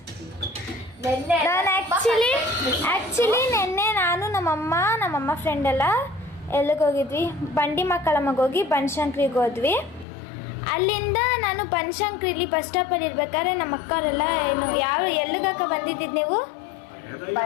ನಾನು ಆ್ಯಕ್ಚುಲಿ ನಿನ್ನೆ ನಾನು ನಮ್ಮಮ್ಮ ಫ್ರೆಂಡ್ ಎಲ್ಲ ಎಲ್ಲಿಗೆ ಹೋಗಿದ್ವಿ, ಬಂಡಿ ಮಕ್ಕಳಮ್ಮಗೆ ಹೋಗಿ ಬನಶಂಕರಿಗೆ ಹೋದ್ವಿ. ಅಲ್ಲಿಂದ ನಾನು ಬನಶಂಕರಿಲಿ ಬಸ್ ಸ್ಟಾಪಲ್ಲಿ ಇರ್ಬೇಕಾದ್ರೆ ನಮ್ಮ ಅಕ್ಕವರೆಲ್ಲ ಏನು ಎಲ್ಲಿಗಕ್ಕ ಬಂದಿದ್ದಿದ್ದು ನೀವು?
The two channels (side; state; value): right; drops out; at 10.1 s